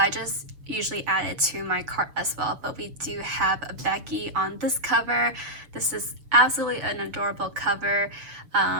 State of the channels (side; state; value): left; late; 6.9 ms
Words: just usually add it to my cart as well. But we do have a Becky on this cover. This is absolutely an adorable cover.